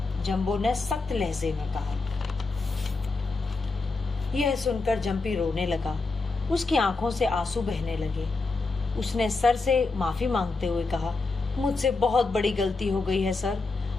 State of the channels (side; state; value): right; quieter; 3.8 dB